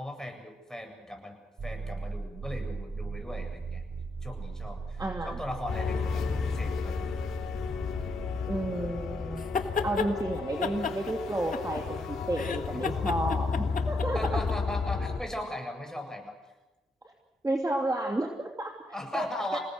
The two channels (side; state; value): both; normal; correlation 0.79